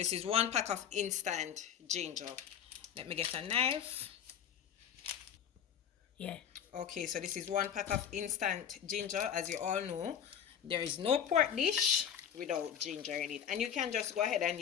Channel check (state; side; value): quieter; right; 8.7 dB